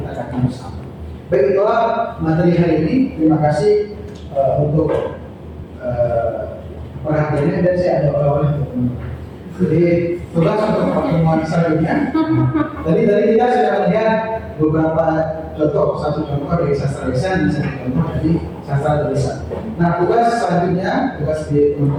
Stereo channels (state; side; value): identical; both; correlation 1.00